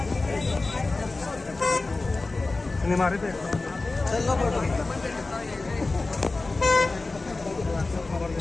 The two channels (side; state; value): right; quieter; 3.4 dB